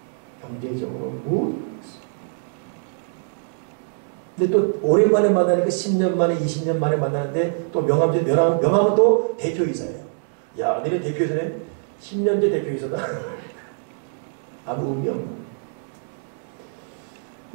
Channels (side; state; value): left; silent; 63 dB below the other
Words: 경제적으로 근데 또 오랜만에 만나니까 10년 만에 20년 만에 만나는데 또 명함은 또 대표이사예요. 야, 너네 대표이사네? 10년째 대표이사다. 아무 의미 없는.